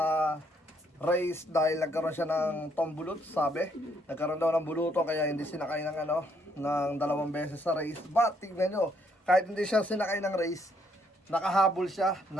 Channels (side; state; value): both; normal; correlation 0.70